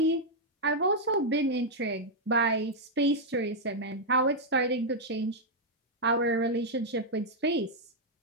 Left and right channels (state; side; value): normal; both; correlation -0.03